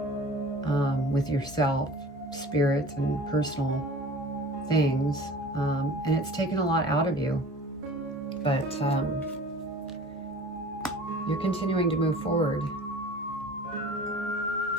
with yourself, spirit, and personal things. And it's taken a lot out of you. But you're continuing to move forward.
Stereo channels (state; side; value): normal; both; correlation 0.43